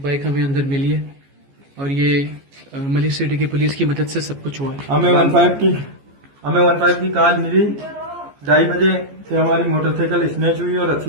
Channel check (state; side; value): late; left; 14 ms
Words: बाइक हमें अंदर मिली है और ये मलिर सिटी की पुलिस की मदद से सब कुछ हुआ है। हमें 15 की कॉल मिली, 2:30 बजे से हमारी मोटरसाइकिल स्नैच हुई और